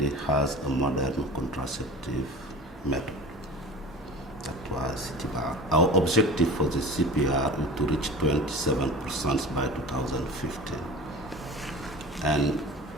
has a modern contraceptive method. That was CPR. Our objective for the CPR is to reach 27% by 2015. And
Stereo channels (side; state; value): both; normal; correlation 0.37